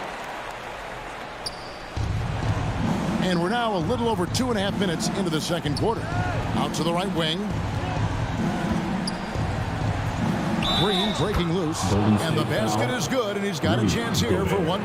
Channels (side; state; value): both; identical; correlation 1.00